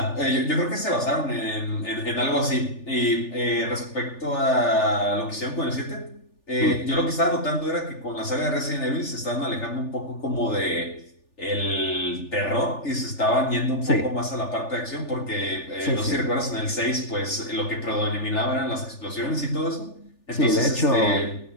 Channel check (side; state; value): right; late; 3.4 ms